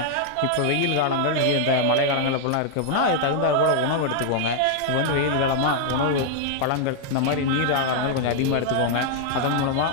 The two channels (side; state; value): both; different; correlation 0.00